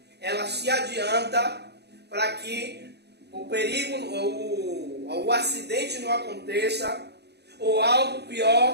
ela se adianta para que o perigo, o acidente não aconteça, ou algo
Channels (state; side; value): late; left; 0.48 ms